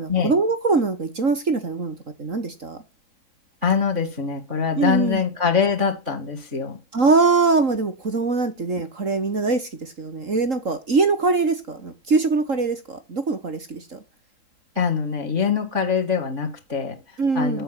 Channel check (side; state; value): left; late; 3.8 ms